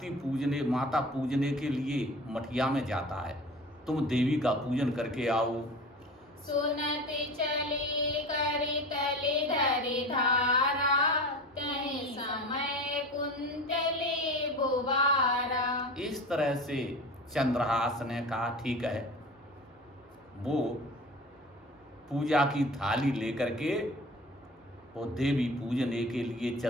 पूजने, माता पूजने के लिए मठिया में जाता है। तुम देवी का पूजन करके आओ। सुनत चले करि तले धरि धारा, तहि समय कुंतले बुबारा। इस तरह से चंद्रहास ने कहा ठीक है। वो पूजा की थाली लेकर के वो देवी पूजने के लिए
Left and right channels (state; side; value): normal; both; correlation 0.35